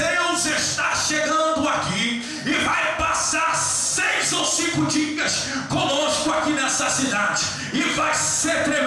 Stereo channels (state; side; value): identical; both; correlation 1.00